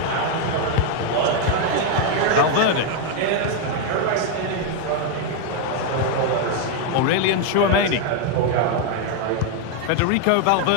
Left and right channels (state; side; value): different; both; correlation 0.01